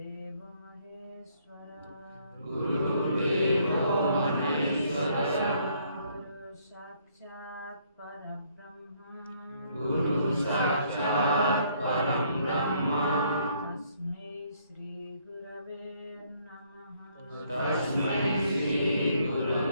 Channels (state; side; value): inverted; both; correlation -0.67